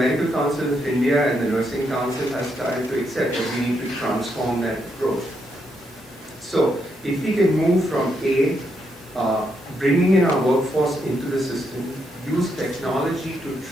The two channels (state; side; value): normal; both; correlation 0.79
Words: Council of India and the Nursing Council has started to accept that we need to transform that approach. So if we can move from bringing in our workforce into the system, use technology to